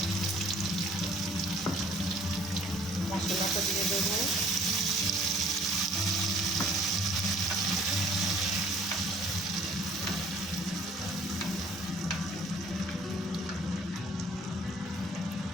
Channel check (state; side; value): normal; both; correlation 0.55